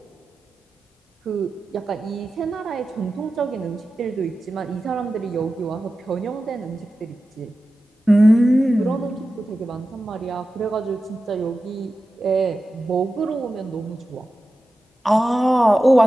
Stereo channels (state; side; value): normal; both; correlation 0.93